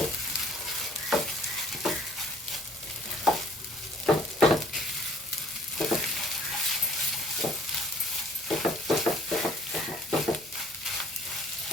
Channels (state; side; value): normal; both; correlation 0.56